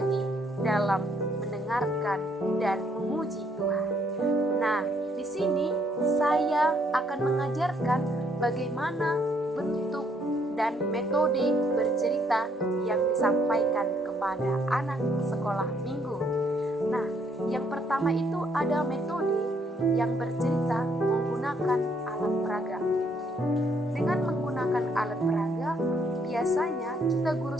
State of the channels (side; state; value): both; normal; correlation 0.69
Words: dalam mendengarkan dan memuji Tuhan. Nah, di sini saya akan mengajarkan bagaimana bentuk dan metode bercerita yang disampaikan kepada anak sekolah minggu. Nah, yang pertama itu ada metode yang bercerita menggunakan alat peraga. Dengan menggunakan alat peraga, biasanya kita guru